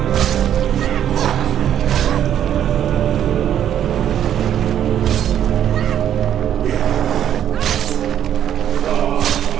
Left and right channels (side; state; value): left; quieter; 10.2 dB